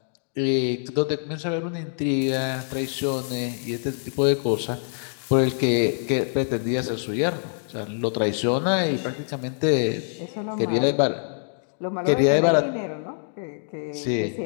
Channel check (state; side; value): silent; right; digital silence